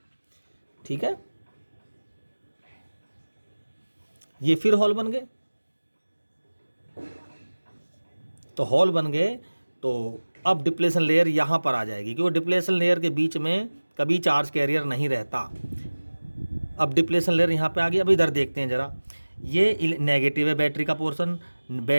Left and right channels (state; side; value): inverted; both; correlation -1.00